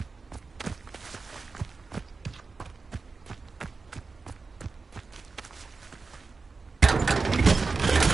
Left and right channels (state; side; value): quieter; left; 4.3 dB